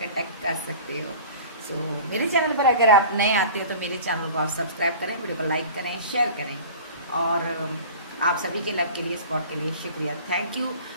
कर सकते हो। सो मेरे चैनल पर अगर आप नए आते हो तो मेरे चैनल को आप सब्सक्राइब करें, वीडियो को लाइक करें, शेयर करें। और आप सभी के लव के लिए, सपोर्ट के लिए शुक्रिया, थैंक यू।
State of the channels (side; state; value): both; inverted; correlation -0.40